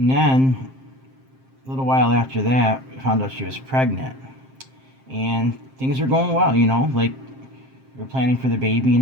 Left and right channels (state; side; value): late; left; 7.6 ms